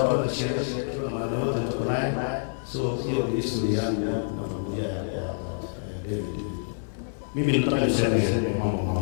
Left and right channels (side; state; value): right; silent; digital silence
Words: kwa sherehe na mara yote tuko naye. So hiyo ni historia yangu na familia ya David. Mimi nataka niseme mama